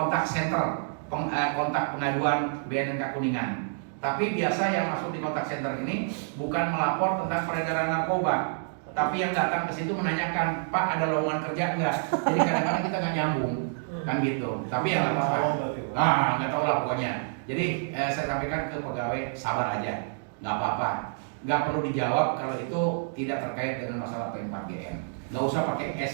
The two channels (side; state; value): left; silent; digital silence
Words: center kontak pengaduan BNNK Kuningan. Tapi biasa yang masuk di kontak center ini bukan melapor tentang peredaran narkoba, tapi yang datang ke situ menanyakan, Pak ada lowongan kerja enggak? Jadi kadang-kadang kita nggak nyambung kan gitu. Tapi ya nggak apa-apa. Nggak tahu lah pokoknya. Jadi saya sampaikan ke pegawai sabar aja, nggak apa-apa. Nggak perlu dijawab kalau itu tidak terkait dengan masalah P4GN. Nggak usah pakai